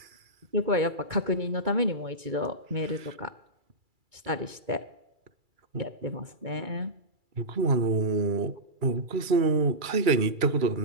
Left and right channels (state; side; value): late; left; 2.3 ms